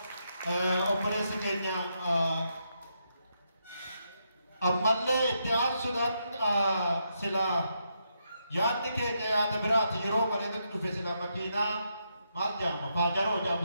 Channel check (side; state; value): both; inverted; correlation -0.80